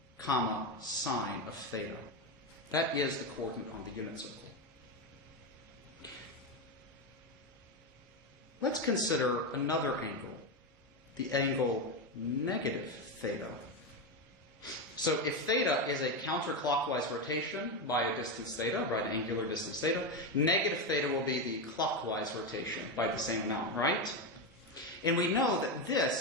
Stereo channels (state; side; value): normal; both; correlation 0.11